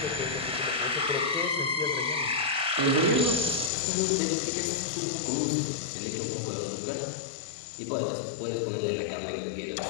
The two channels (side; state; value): right; drops out; at 3.7 s